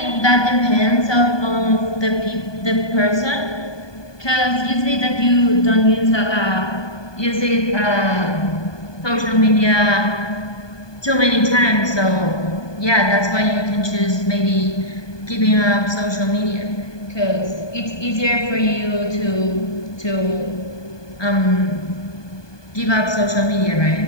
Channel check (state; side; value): late; right; 1.2 ms